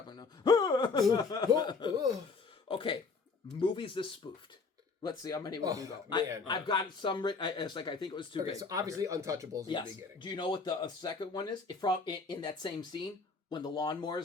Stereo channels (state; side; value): quieter; right; 4.5 dB